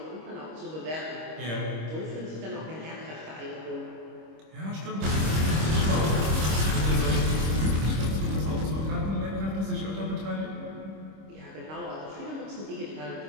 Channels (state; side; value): late; left; 26 ms